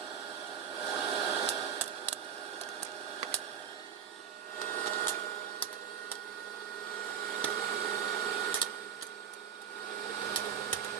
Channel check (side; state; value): left; quieter; 8.1 dB